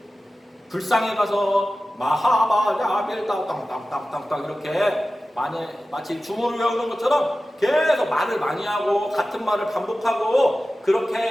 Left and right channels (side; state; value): both; normal; correlation 0.95